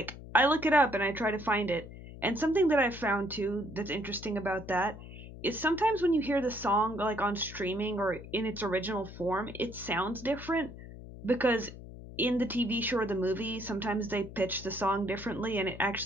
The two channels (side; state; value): left; noise; hum, 14 dB below the sound